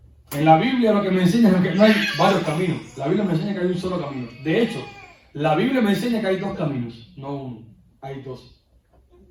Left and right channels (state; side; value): identical; both; correlation 1.00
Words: En la Biblia lo que me enseña es que no hay varios caminos. La Biblia me enseña que hay un solo camino. De hecho, la Biblia me enseña que hay 2 caminos, no uno. Hay 2.